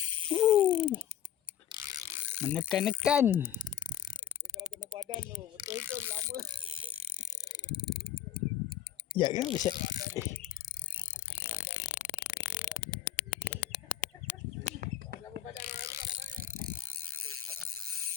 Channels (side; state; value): right; quieter; 11.0 dB